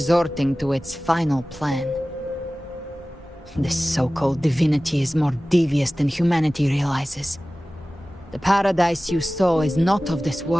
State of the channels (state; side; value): normal; both; correlation 0.97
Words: to its final plan. This so-called divinity is more devious than humanity realizes. The paradise you saw is not of this